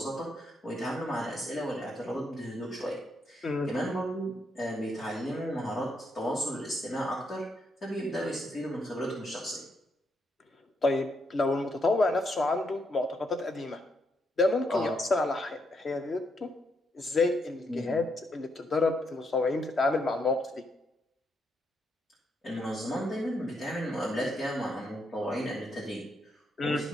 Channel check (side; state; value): both; normal; correlation 0.78